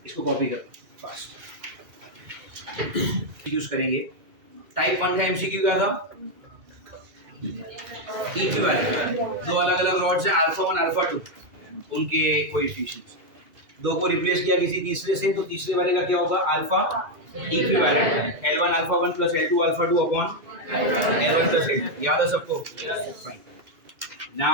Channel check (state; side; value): late; left; 2.3 ms